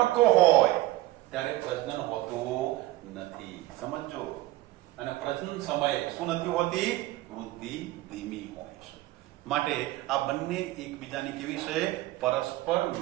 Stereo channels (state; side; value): quieter; left; 17.0 dB